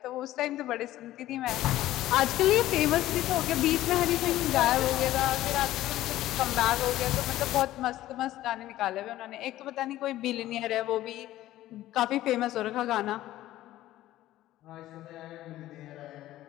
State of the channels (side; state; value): right; quieter; 14.8 dB